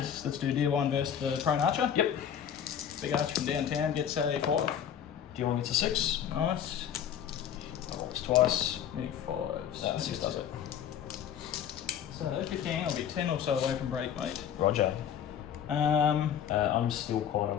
Let's do D1 versus the prone archer. Yep. Big archer from downtown gets a 5. D1 gets a 6. Nice. Rolls twice. Move 5s. No, 6 does it. So 15, I'll be 10 or so away from break, mate. Roger. Um, I'm still quite a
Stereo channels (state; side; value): quieter; right; 9.2 dB